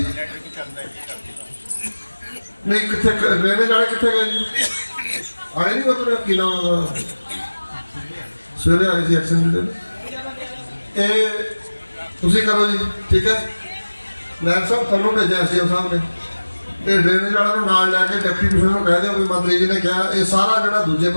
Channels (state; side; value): inverted; both; correlation -1.00